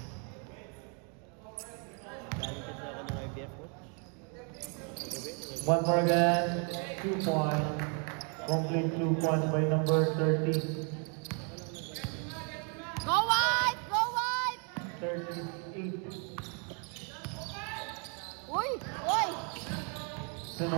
Galing kasi ako ng IBF, coach. One more again. 2 points. Complete 2 points by number 30. Go White! Go White! 38. Uy! Uy! Then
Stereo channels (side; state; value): left; quieter; 38.3 dB